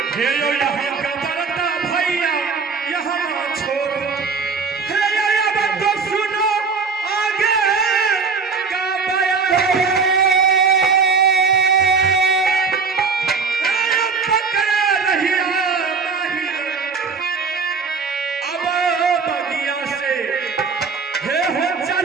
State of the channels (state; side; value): quieter; left; 4.9 dB